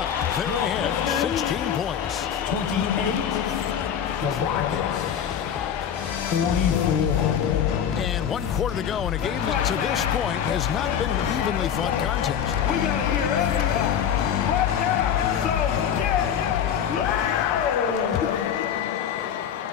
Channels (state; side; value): quieter; right; 8.6 dB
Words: They're ahead, 16 points. 28, the Rockets, 24. And 1 quarter to go in a game that to this point has not been an evenly fought contest. We got to hear everybody right now, so get